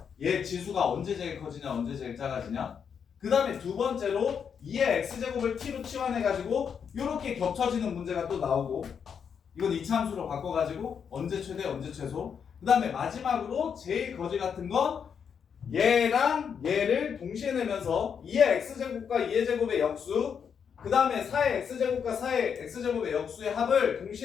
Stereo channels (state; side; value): quieter; right; 7.1 dB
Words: 얘 지수가 언제 제일 커지냐 언제 제일 작아지냐. 그 다음에 두 번째로 2의 x제곱을 t로 치환해가지고 이렇게 겹쳐지는 문제가 또 나오고 이건 2차 함수로 바꿔가지고 언제 최대 언제 최소. 그 다음에 마지막으로 제일 거지 같은 건 얘랑 얘를 동시에 내면서 2의 x제곱과 2의 제곱의 역수 그 다음에 4의 x제곱과 4의 x제곱의 역수의 합을